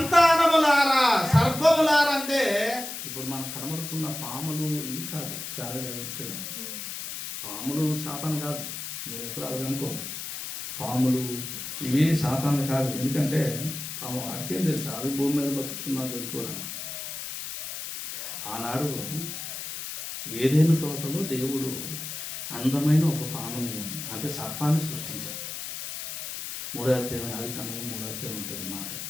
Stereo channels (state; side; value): noise; left; hiss, 7 dB below the sound